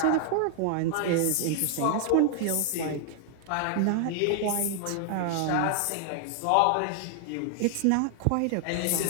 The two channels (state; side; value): different; both; correlation 0.00